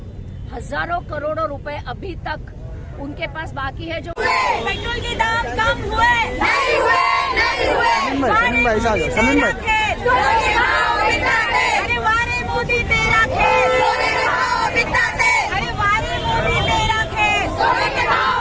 हजारों करोड़ों रुपए अभी तक उनके पास बाकी है। जो पेट्रोल के दाम कम हुए नहीं हुए, अरे वारे मोदी तेरा खेल, अरे वारे मोदी तेरा खेल,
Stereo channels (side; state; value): both; identical; correlation 1.00